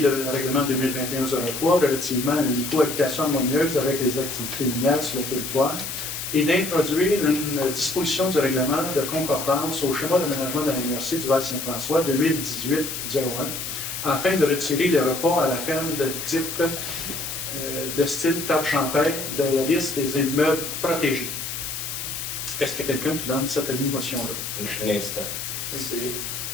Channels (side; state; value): left; noise; hiss, 6 dB below the sound